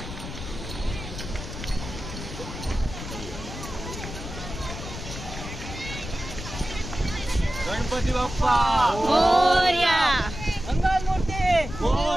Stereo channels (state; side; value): noise; left; rumble, 9 dB below the sound